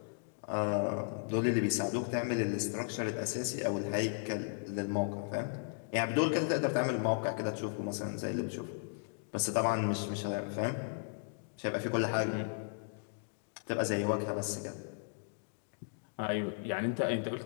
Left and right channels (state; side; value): silent; right; digital silence